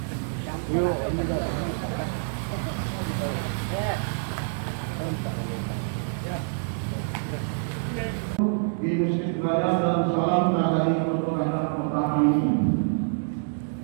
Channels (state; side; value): silent; left; 60 dB below the other